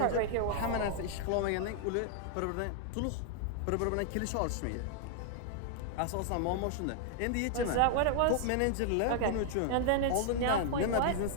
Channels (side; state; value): both; different; correlation 0.00